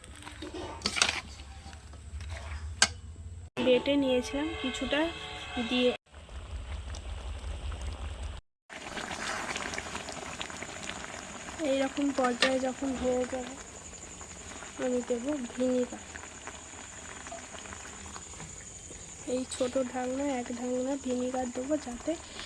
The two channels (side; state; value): both; identical; correlation 1.00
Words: বেটে নিয়েছিলাম কিছুটা দিয়ে, এইরকম পর্যায়ে যখন হয়ে যাবে আমি দেবো ভিনিগার। এই ছোট ঢাকনা 1 ঢাকনা ভিনিগার দেবো, যাতে